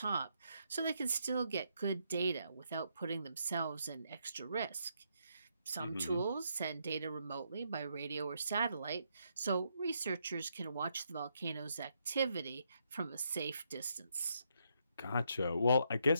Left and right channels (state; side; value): inverted; both; correlation -0.77